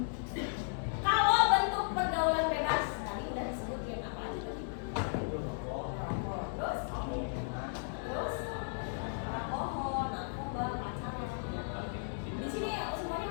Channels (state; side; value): silent; right; 54 dB below the other